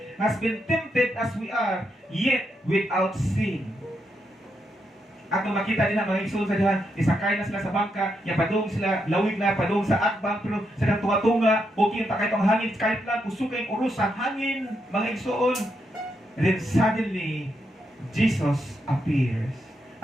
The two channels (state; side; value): normal; both; correlation 0.81